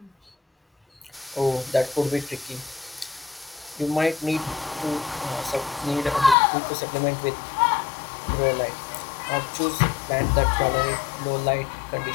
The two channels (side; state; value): right; drops out; at 6.4 s